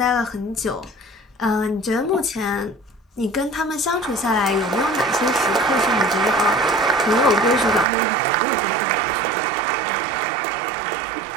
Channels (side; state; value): left; drops out; at 7.9 s